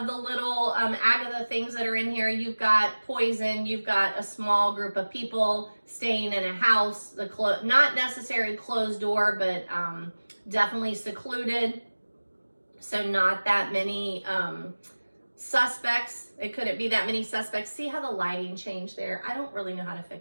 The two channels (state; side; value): inverted; both; correlation -1.00